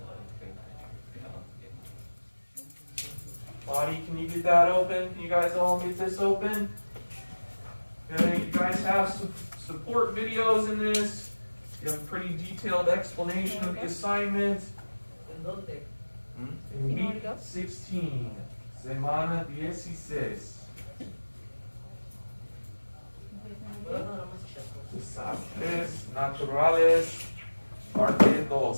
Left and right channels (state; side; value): inverted; both; correlation -1.00